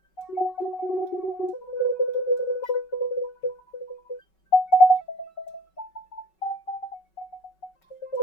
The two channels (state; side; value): late; right; 5.3 ms